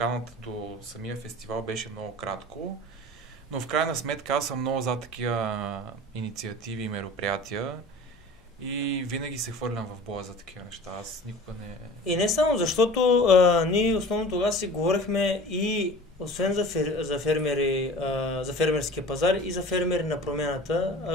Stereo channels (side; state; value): both; normal; correlation 0.41